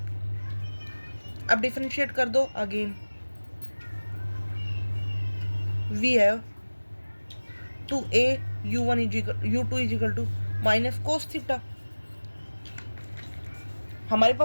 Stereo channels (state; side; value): inverted; both; correlation -1.00